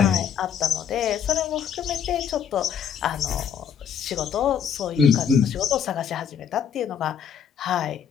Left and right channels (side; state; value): right; quieter; 7.9 dB